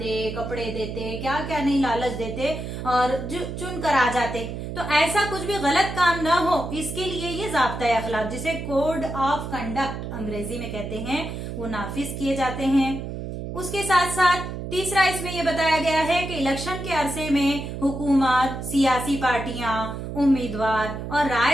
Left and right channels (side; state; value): right; noise; hum, 7 dB below the sound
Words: कपड़े देते, क्या क्या नहीं लालच देते और चुन कर आ जाते। तो ऐसा कुछ भी गलत काम ना हो, इसके लिए ये ज़ाब्ता अखलाक, जिसे कोड ऑफ कंडक्ट अंग्रेजी में कहते हैं, वो नाफिज किए जाते हैं। उसके साथ साथ तीसरा इसमें यह बताया गया है कि इलेक्शन के अरसे में हुकूमत, सियासी पार्टियां, उम्मीदवार और